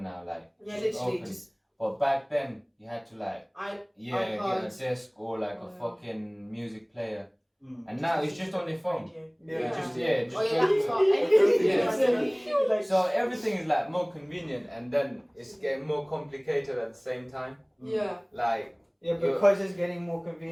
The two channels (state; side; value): identical; both; correlation 1.00